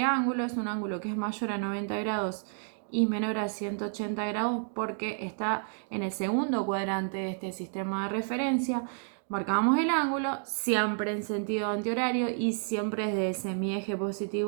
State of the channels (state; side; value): silent; left; 58 dB below the other